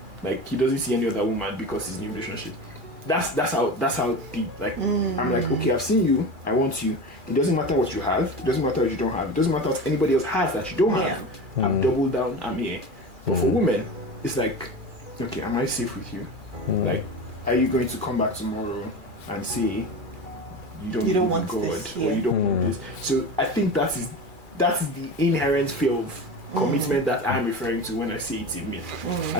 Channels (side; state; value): left; late; 2.4 ms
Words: Like, he doesn't see any other woman because he's in a relationship. That's how deep. Like, I'm like, okay, I've seen you, I want you. It doesn't matter what you have, it doesn't matter what you don't have, it doesn't matter what anybody else has that you don't have. I've doubled down, I'm here. But for women, it's like, okay, am I safe with you? Like, are you going to come back tomorrow and say you don't want this, or you don't want this? So I think that is the inherent fear of commitment that I'm referring to when I say it's a myth.